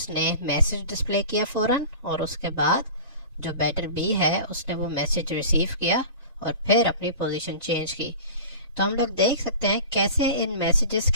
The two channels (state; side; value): inverted; both; correlation -0.37